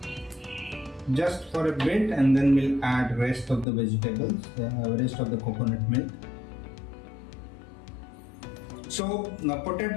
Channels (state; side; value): drops out; right; at 3.7 s